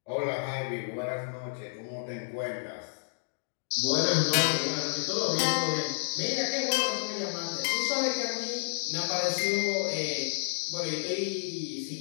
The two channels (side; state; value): right; silent; digital silence